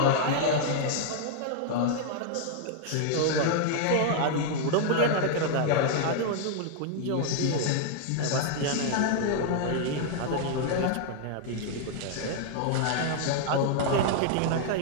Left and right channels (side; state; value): both; different; correlation -0.01